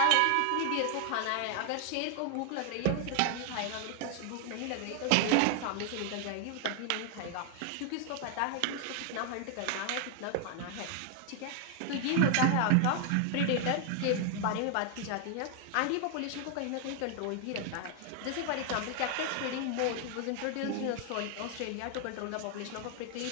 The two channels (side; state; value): both; different; correlation 0.00